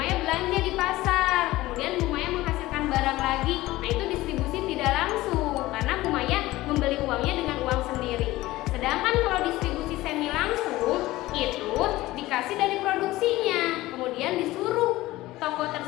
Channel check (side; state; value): right; quieter; 17.7 dB